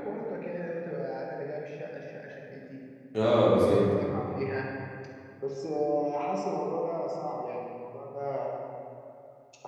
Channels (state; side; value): identical; both; correlation 1.00